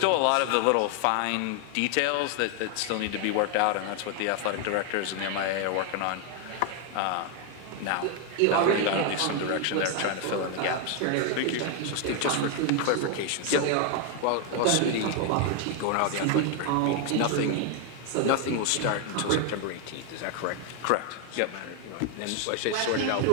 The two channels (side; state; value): both; different; correlation 0.00